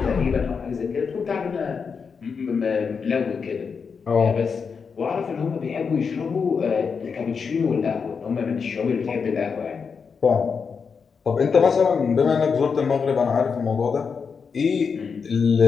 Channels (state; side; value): quieter; right; 5.8 dB